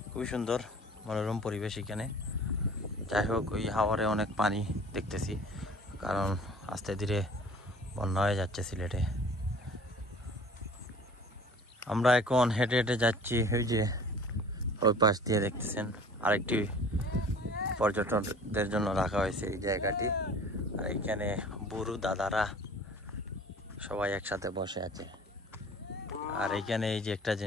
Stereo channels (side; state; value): both; normal; correlation 0.46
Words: খুবই সুন্দর মনোরম পরিবেশ এখানে। যাই হোক, ওই হাওরে অনেক পানি দেখতেছি, কারণ আস্তে ধীরে বন্যা হয়ে যাচ্ছে সিলেটে। আমরা এখন হেঁটে হেঁটে যাচ্ছি ওই যে ওই পাশ দিয়ে, দেখতেছেন আরেকটি পর্যটকদের জন্য রাখা হয়েছে এই জায়গাটি। আর এইখানে বুড়ো দাদারা সবাই একসাথে বসে আছে। আর এইখানে এই যে একটা